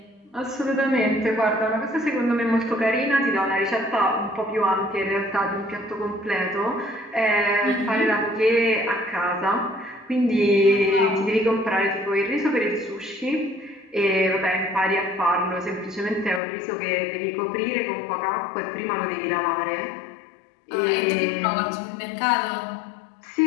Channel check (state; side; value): drops out; right; at 16.4 s